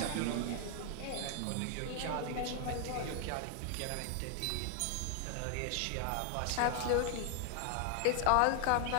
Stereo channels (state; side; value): different; both; correlation 0.00